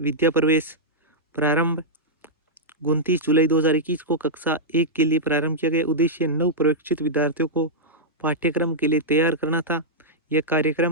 प्रवेश, प्रारंभ 29 जुलाई 2021 को, कक्षा 1 के लिए प्रारंभ किया गया। उद्देश्य नव प्रशिक्षित विद्यार्थियों को पाठ्यक्रम के लिए तैयार करना था। यह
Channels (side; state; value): both; normal; correlation -0.09